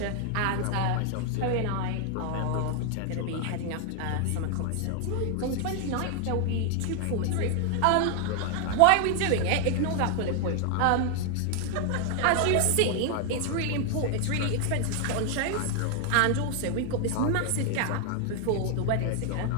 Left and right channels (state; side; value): different; both; correlation 0.00